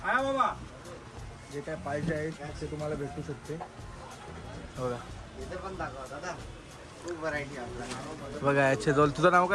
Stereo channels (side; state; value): both; identical; correlation 1.00